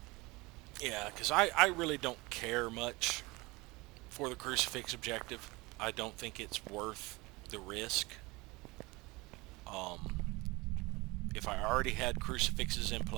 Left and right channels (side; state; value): left; quieter; 23.4 dB